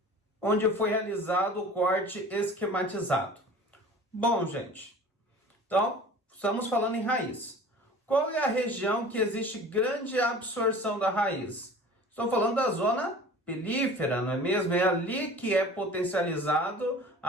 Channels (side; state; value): both; normal; correlation 0.42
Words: onde foi realizado o corte esquematizado? Bom, gente, então, estamos falando em raiz. Qual é a região que existe grande absorção da raiz? Estou falando da zona pilífera, não é mesmo? É ali que é potencializado